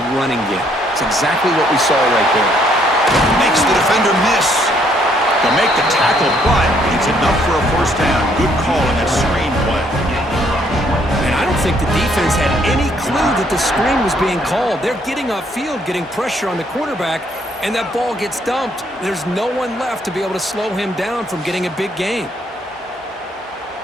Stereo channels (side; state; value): both; normal; correlation 0.68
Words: running game. It's exactly what we saw right there. Makes the defender miss. They'll make the tackle, but it's enough for a first down. Good call on that screen play. And I don't think the defense had any clue that the screen was being called. They're getting upfield, getting pressure on the quarterback, and that ball gets dumped. There's no one left to be able to slow him down from getting a big gain.